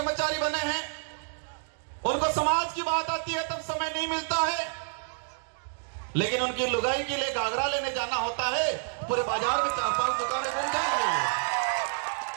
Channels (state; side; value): silent; left; digital silence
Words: बने हैं, उनको समाज की बात आती है तब समय नहीं मिलता है, लेकिन उनकी लुगाई के लिए घाघरा लेने जाना होता है, पूरे बाजार में 4-5 दुकानें बन जाएंगी।